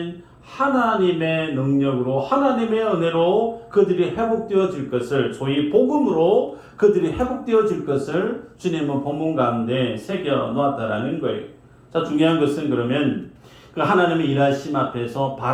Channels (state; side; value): identical; both; correlation 1.00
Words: 하나님의 능력으로 하나님의 은혜로 그들이 회복되어질 것을 소위 복음으로 그들이 회복되어질 것을 주님은 본문 가운데 새겨 놓았다라는 거예요. 자, 중요한 것은 그러면 그 하나님의 일하심 앞에서